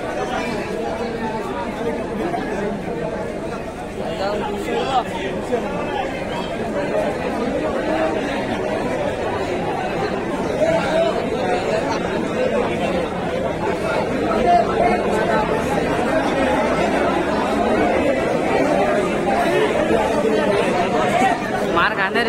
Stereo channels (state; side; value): identical; both; correlation 1.00